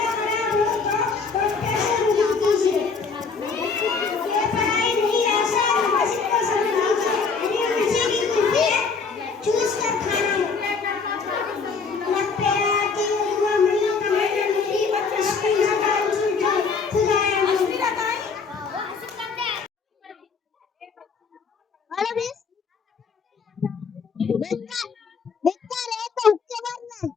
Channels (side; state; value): right; quieter; 5.0 dB